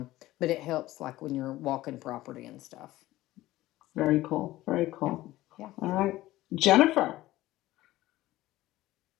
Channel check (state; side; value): quieter; right; 16.6 dB